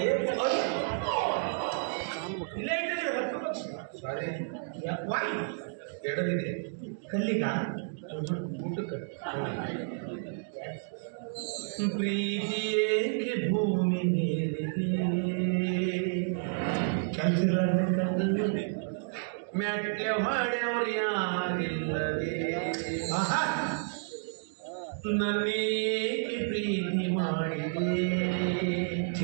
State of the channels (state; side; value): silent; left; digital silence